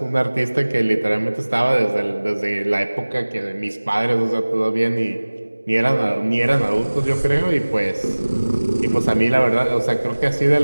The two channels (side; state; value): both; inverted; correlation -1.00